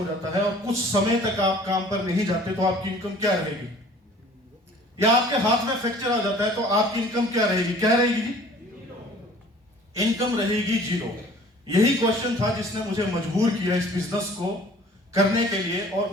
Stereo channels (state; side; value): normal; both; correlation 0.50